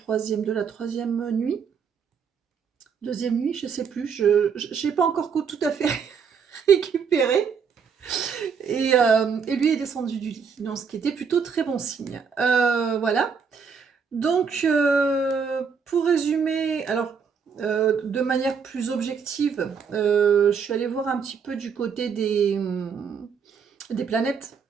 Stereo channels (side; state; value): left; quieter; 6.3 dB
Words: la troisième nuit. Deuxième nuit, je sais plus, je n'ai pas encore tout à fait récupéré. Et lui est descendu du lit, donc ce qui était plutôt très bon signe. Voilà. Donc, pour résumer, alors de manière plus objective, je suis allée voir un petit peu du côté des planètes,